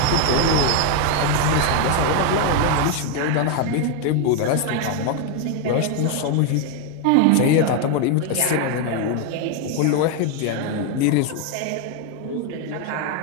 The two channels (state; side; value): different; both; correlation 0.01